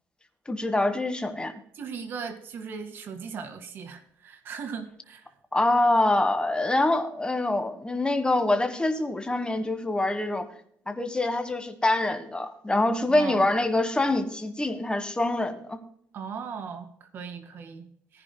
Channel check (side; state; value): both; normal; correlation 0.89